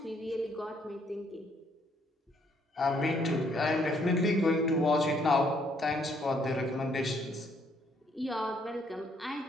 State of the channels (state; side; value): normal; both; correlation 0.68